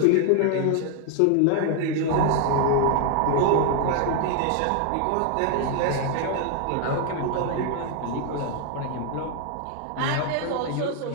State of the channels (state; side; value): different; both; correlation 0.00